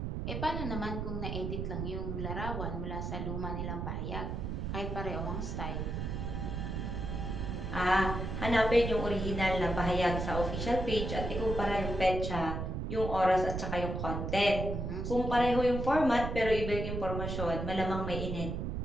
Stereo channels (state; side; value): noise; right; rumble, 3 dB below the sound